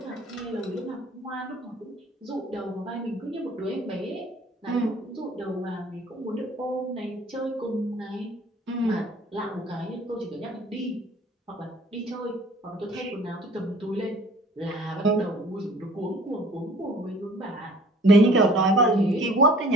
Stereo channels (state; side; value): normal; both; correlation 0.51